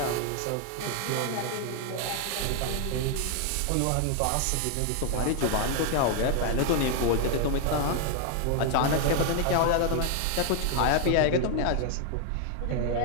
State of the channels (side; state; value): both; different; correlation 0.00